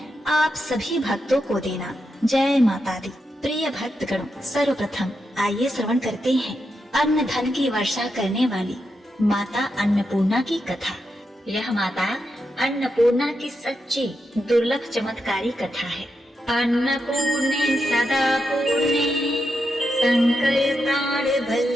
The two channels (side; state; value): both; normal; correlation 0.85